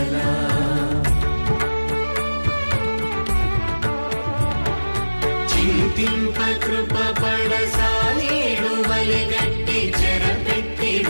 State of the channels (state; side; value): inverted; both; correlation -1.00